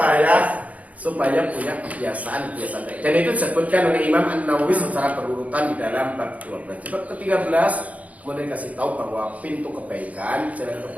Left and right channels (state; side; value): late; left; 0.070 ms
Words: supaya punya kebiasaan baik. Dan itu disebutkan oleh Imam An-Nawawi secara berurutan di dalam bab 12. Bab ke-13 kemudian kasih tahu bahwa pintu kebaikan, jalan